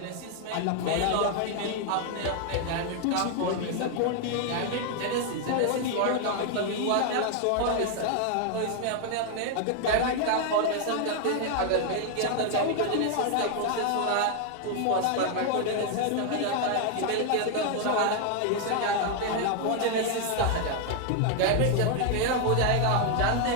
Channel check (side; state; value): both; different; correlation 0.00